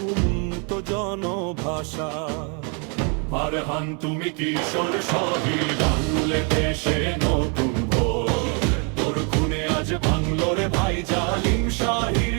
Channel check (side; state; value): left; quieter; 36.5 dB